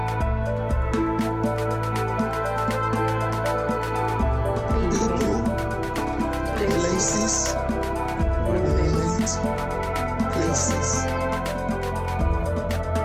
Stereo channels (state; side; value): identical; both; correlation 1.00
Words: Places, moments, places.